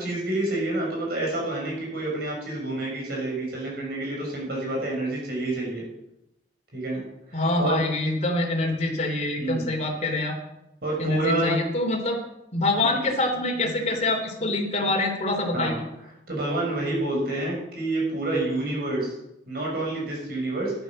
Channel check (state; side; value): normal; both; correlation 0.35